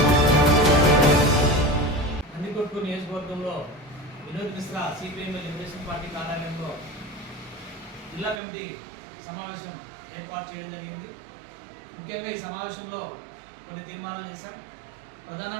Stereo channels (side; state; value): left; drops out; at 8.4 s